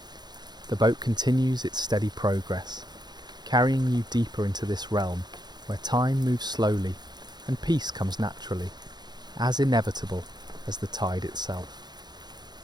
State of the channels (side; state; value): left; late; 0.20 ms